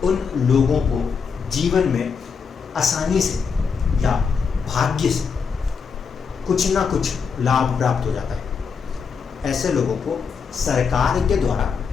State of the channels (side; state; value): right; quieter; 5.8 dB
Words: उन लोगों को जीवन में आसानी से या भाग्य से कुछ ना कुछ लाभ प्राप्त हो जाता है। ऐसे लोगों को सरकार के द्वारा